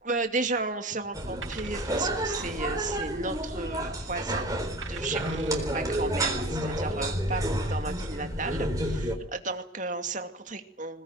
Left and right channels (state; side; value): normal; both; correlation 0.38